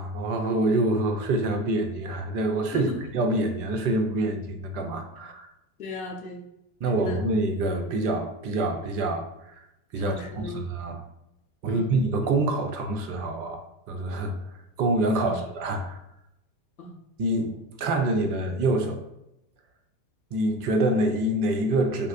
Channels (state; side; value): late; right; 1.2 ms